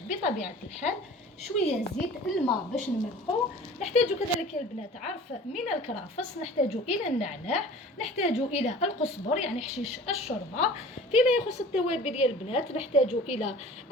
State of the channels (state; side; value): normal; both; correlation 0.44